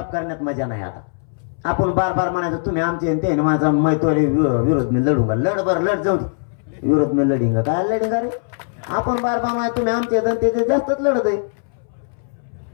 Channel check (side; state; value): right; silent; 65 dB below the other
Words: करण्यात मजा नाही. आता आपण बार बार म्हणायचं तुम्ही आमचे ते माझा मैत्री विरोध मी लढूंगा. लढ बर लढ जाऊ दे, विरोध मी लढिंगा. काय लढिंगा रे? आपण बार बार म्हणायचं तुम्ही आमचे ते जास्तच लढत आहे.